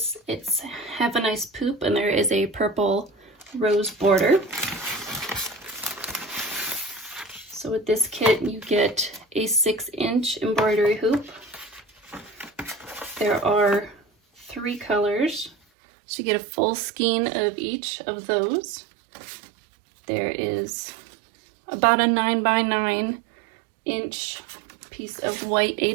It's Have a Nice Poop, and there is a purple rose border. So with this kit you get a 6-inch embroidery hoop. There are 3 colors. So you get a full skein of each of those. There is about a 9x9 inch piece of white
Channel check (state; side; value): drops out; left; at 15.6 s